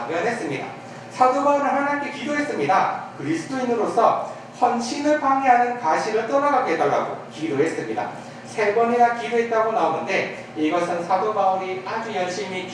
사도 바울은 하나님께 기도했습니다. 그리스도인으로서 헌신을 방해하는 가시를 떠나가게 해달라고 기도했습니다. 3번이나 기도했다고 나오는데 이것은 사도 바울이 아주 열심히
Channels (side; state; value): both; identical; correlation 1.00